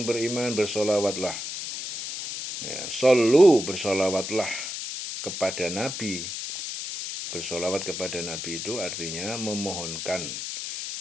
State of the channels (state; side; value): noise; left; hiss, 6 dB below the sound